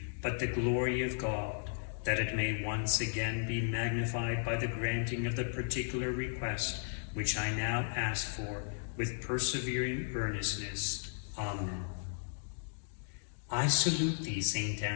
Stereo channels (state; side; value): silent; right; digital silence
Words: but the glory of God, that it may once again be magnified by the granting of the particular request which I now ask for with persevering earnestness. Amen. I salute thee, Saint